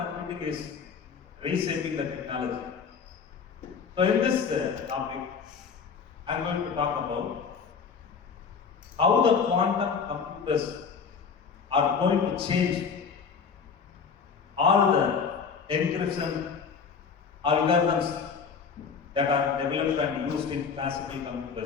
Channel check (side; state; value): right; quieter; 6.0 dB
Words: is reshaping the technology. So in this topic, I am going to talk about how the quantum computers are going to change all the encryption algorithms that are developed and used in classical